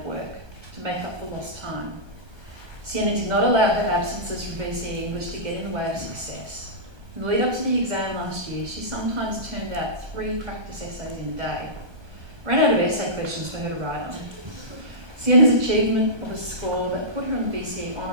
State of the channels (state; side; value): late; left; 1.2 ms